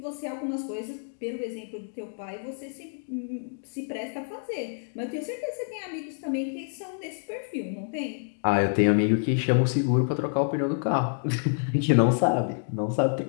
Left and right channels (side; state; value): right; silent; digital silence